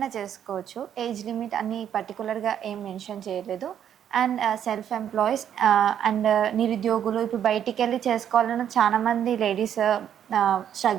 చేసుకోవచ్చు. ఏజ్ లిమిట్ అన్ని పర్టికులర్గా ఏం మెన్షన్ చేయలేదు. అండ్ సెల్ఫ్ ఎంప్లాయీస్ అండ్ నిరుద్యోగులు ఇప్పుడు బయటికి వెళ్ళి చేసుకోవాలన్న చాలా మంది లేడీస్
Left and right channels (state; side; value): quieter; left; 9.5 dB